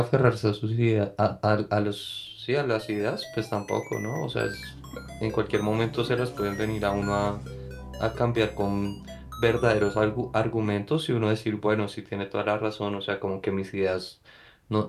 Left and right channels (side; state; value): both; identical; correlation 1.00